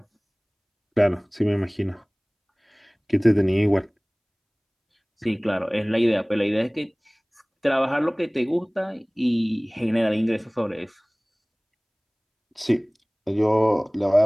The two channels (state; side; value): identical; both; correlation 1.00